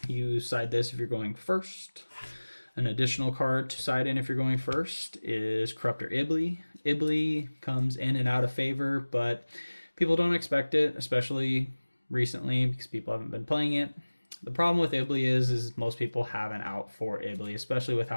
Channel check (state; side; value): inverted; both; correlation -1.00